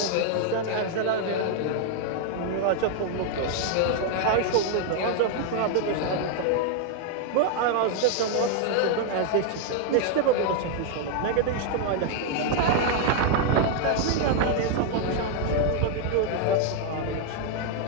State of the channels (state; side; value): different; both; correlation 0.00